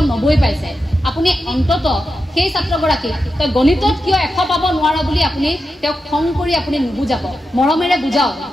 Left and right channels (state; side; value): normal; both; correlation 0.89